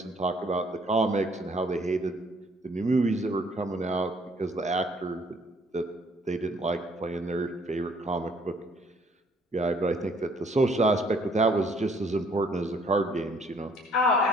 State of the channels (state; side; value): normal; both; correlation 0.63